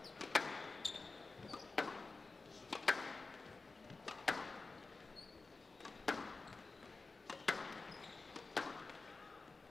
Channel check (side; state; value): right; quieter; 3.8 dB